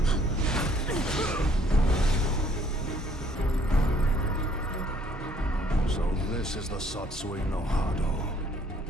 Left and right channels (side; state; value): both; normal; correlation 0.62